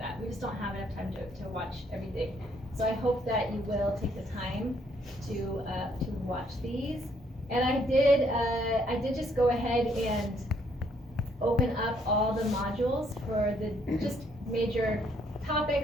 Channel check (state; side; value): normal; both; correlation 0.69